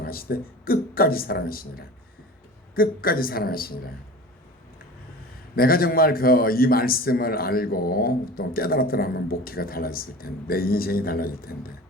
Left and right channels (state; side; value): normal; both; correlation 0.37